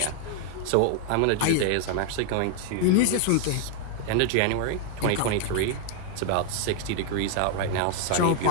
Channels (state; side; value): different; both; correlation 0.00